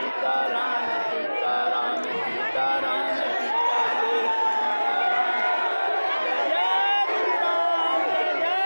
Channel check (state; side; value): inverted; both; correlation -1.00